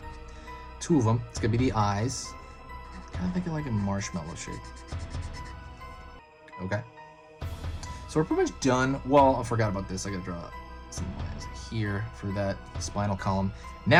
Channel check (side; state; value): both; identical; correlation 1.00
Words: two of them. It's gonna be the eyes. Kind of think of like a marshmallow shape. Okay. So we're pretty much done. Well, I forgot about this. I gotta draw some lines here for that spinal column.